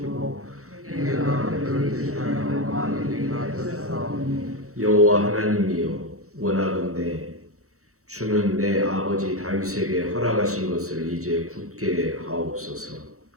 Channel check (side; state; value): left; late; 0.64 ms